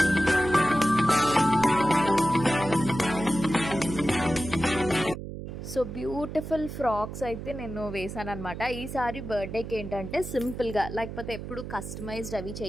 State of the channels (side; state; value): right; noise; hum, 9 dB below the sound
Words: So beautiful frocks అయితే నేను వేసాను అనమాట. ఈసారి బర్త్డేకి ఏంటంటే సింపుల్గా, లేకపోతే ఎప్పుడు కస్టమైజ్డ్ అవి